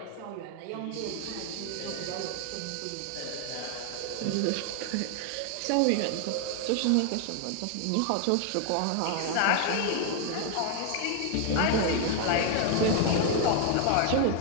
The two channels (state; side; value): different; both; correlation 0.00